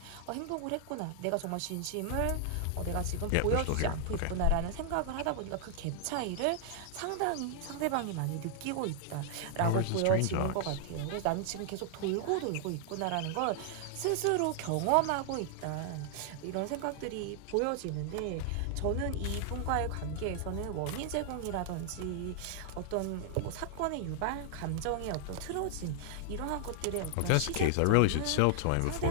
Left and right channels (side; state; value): both; different; correlation 0.00